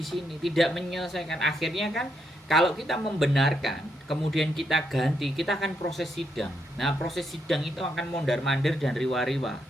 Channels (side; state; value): both; normal; correlation 0.79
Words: sini tidak menyelesaikan. Akhirnya kan kalau kita membenarkan, kemudian kita ganti, kita akan proses sidang. Nah, proses sidang itu akan mondar-mandir dan riwa-riwa.